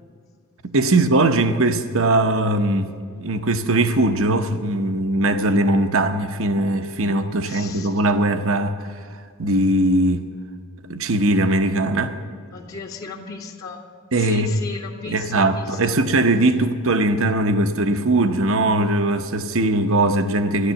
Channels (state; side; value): normal; both; correlation 0.30